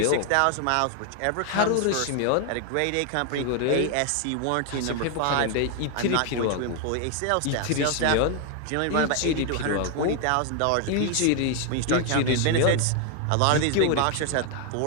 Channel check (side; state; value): both; different; correlation 0.00